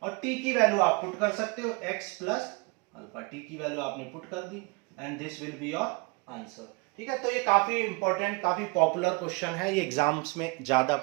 और t की वैल्यू आप पुट कर सकते हो x प्लस अल्फा, t की वैल्यू आपने पुट कर दी and this will be your answer. ठीक है, तो ये काफी इंपॉर्टेंट काफी पॉपुलर क्वेश्चन है, ये एग्जाम्स में ज्यादा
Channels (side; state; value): left; quieter; 28.9 dB